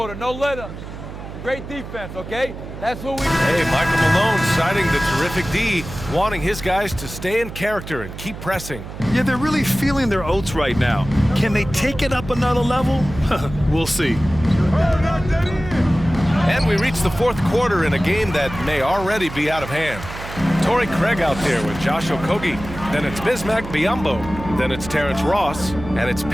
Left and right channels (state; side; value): noise; right; hum, 11 dB below the sound